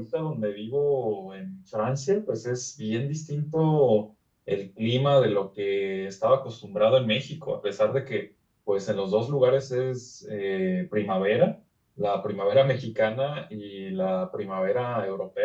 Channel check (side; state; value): both; identical; correlation 1.00